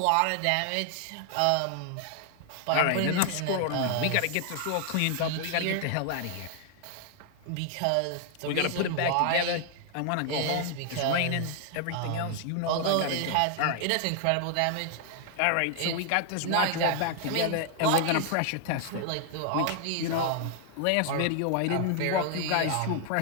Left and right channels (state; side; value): different; both; correlation 0.00